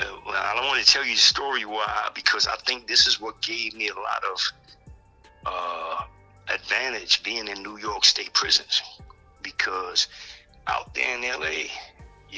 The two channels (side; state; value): both; identical; correlation 1.00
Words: don't want to tell you the story why, because I think this is what gave me a lot of advantage being in New York State prisons, because out there in LA,